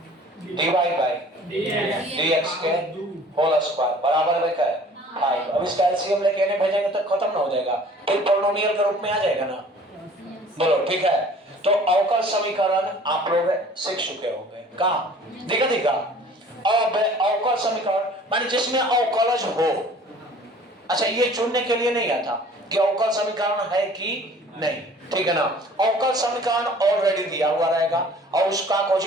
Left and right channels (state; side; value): normal; both; correlation 0.50